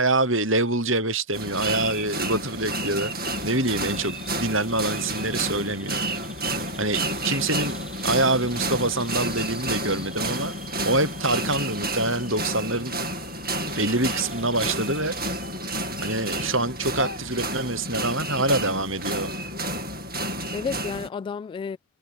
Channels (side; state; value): both; normal; correlation -0.08